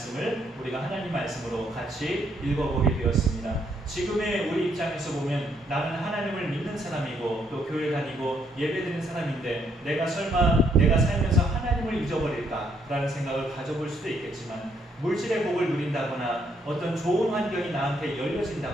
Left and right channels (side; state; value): both; normal; correlation 0.72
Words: 우리가 하나님 말씀으로 같이 읽어보게 되었습니다. 지금의 우리 입장에서 보면 나는 하나님을 믿는 사람이고 또 교회 다니고 예배드리는 사람인데 내가 설마 내가 살면서 하나님을 잊어버릴까라는 생각을 가져볼 수도 있겠지만 물질의 복을 누린다거나 어떤 좋은 환경이 나한테